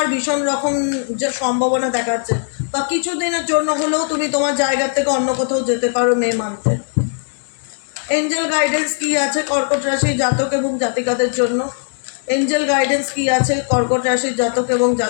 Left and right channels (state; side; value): silent; right; digital silence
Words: ভীষণ রকম যে সম্ভাবনা দেখাচ্ছে, বা কিছুদিনের জন্য হলেও তুমি তোমার জায়গা থেকে অন্য কোথাও যেতে পারো মে মান্থে। এঞ্জেল গাইডেন্স কি আছে কর্কট রাশির জাতক এবং জাতিকাদের জন্য? এঞ্জেল গাইডেন্স কি আছে কর্কট রাশির জাতক এবং